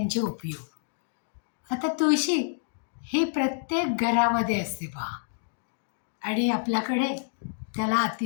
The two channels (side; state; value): right; silent; digital silence